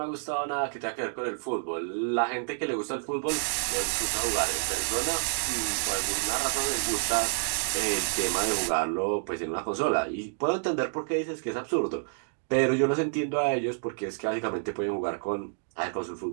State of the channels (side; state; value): left; silent; digital silence